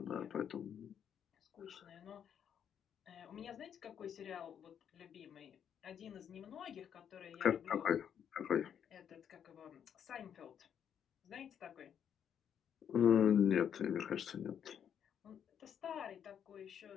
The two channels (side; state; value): right; quieter; 8.6 dB